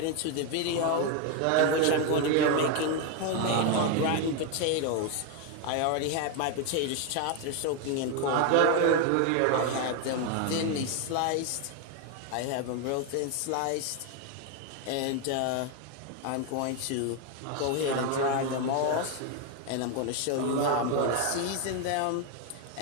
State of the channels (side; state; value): both; different; correlation 0.01